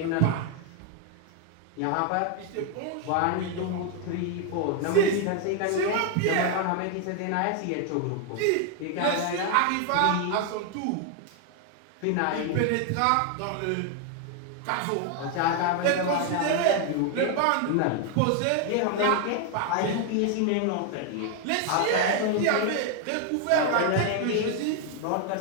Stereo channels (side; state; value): both; different; correlation 0.00